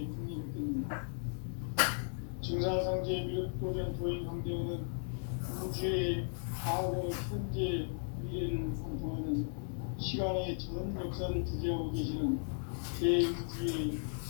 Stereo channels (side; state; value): right; silent; 54 dB below the other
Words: 강림했겠는가? 증산상제 미륵도전 도인 강대훈은 우주의 과거, 현재, 미래를 관통하는 시간의 전 역사를 주재하고 계시는 대우주의